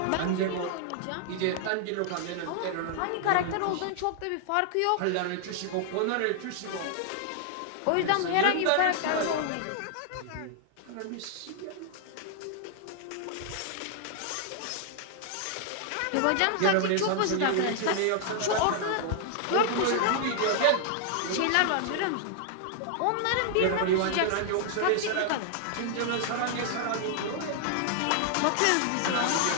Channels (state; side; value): different; both; correlation 0.00